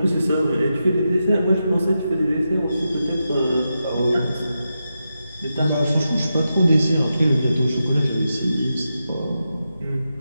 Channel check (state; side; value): inverted; both; correlation -0.88